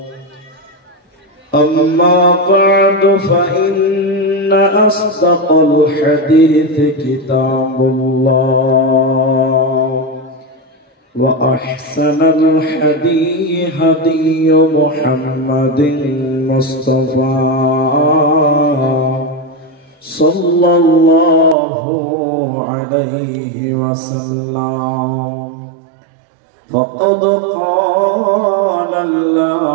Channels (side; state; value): left; drops out; at 21.6 s